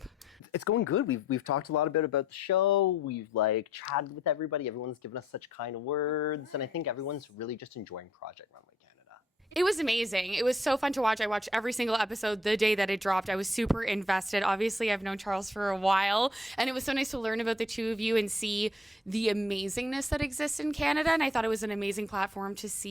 It's going good. We've talked a lot about the show. We've chatted with everybody. Everyone's given us such kind words, and I think everyone's really just enjoying Project Runway Canada. It was amazing. It was so fun to watch. I watched every single episode the day that it dropped. I was super invested. Obviously, I've known Charles for a while, and it was so nice to learn about the two of you and see the amazingness that exists in Canada. And I thought it was an amazing platform to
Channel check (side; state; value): both; normal; correlation 0.64